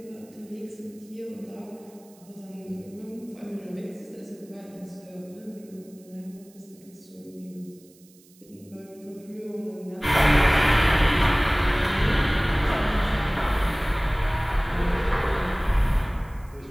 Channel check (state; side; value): noise; right; hiss, 27 dB below the sound